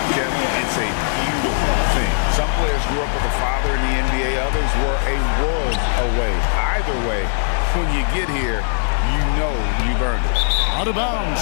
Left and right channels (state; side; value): silent; right; 66 dB below the other